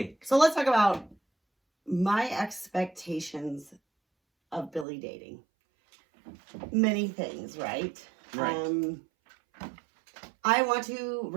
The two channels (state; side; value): drops out; left; at 4.9 s